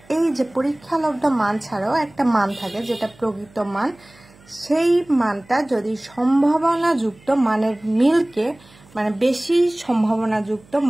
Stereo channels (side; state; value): right; noise; hum, 27 dB below the sound